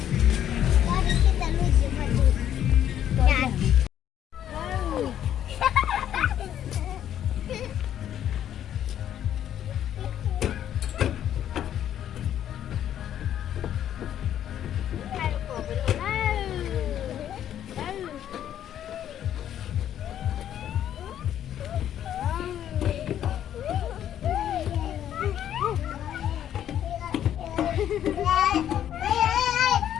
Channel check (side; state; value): right; quieter; 10.6 dB